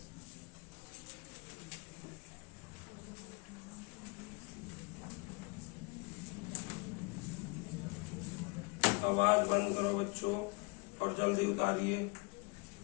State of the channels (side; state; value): right; quieter; 28.6 dB